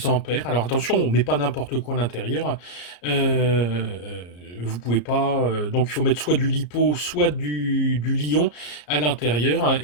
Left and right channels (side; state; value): right; late; 34 ms